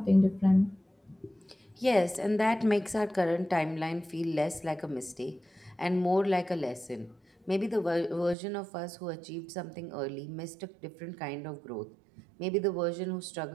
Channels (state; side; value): drops out; left; at 8.3 s